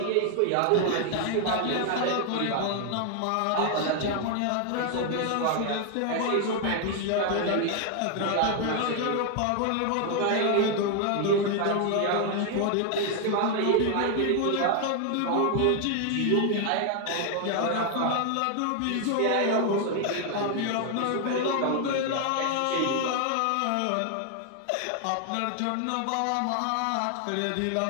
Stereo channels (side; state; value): both; different; correlation 0.00